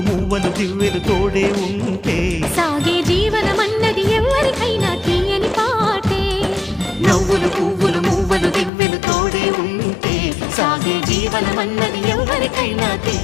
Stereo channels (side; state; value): right; drops out; at 8.7 s